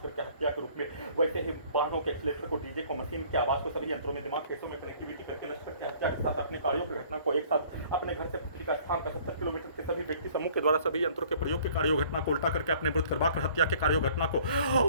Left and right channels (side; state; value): both; inverted; correlation -0.55